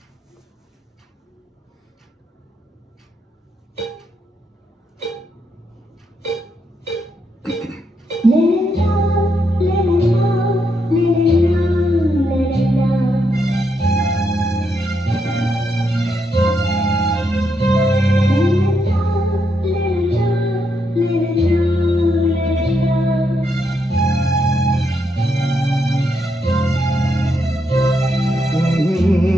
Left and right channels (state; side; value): normal; both; correlation 0.79